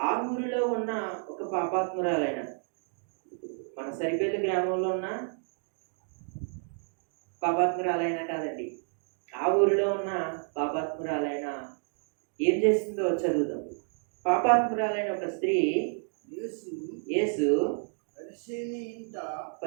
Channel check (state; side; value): silent; left; 55 dB below the other